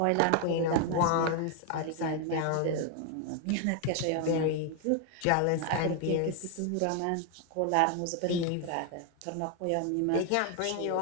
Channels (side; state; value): both; different; correlation 0.01